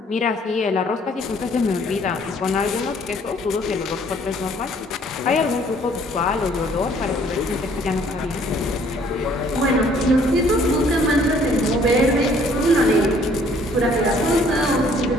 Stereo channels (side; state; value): both; normal; correlation 0.60